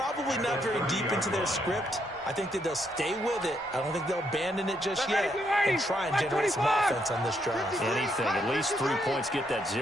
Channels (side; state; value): both; normal; correlation 0.76